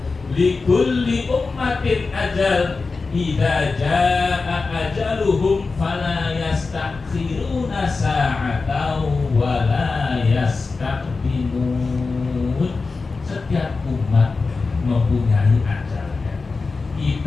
Likulli ummatin ajal, idza jaa ajaluhum fala yastakhiruna sa'atan wa la yastaqdimun. Setiap umat mempunyai ajalnya.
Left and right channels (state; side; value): quieter; right; 4.1 dB